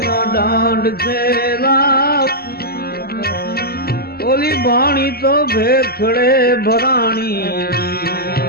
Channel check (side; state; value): right; late; 0.45 ms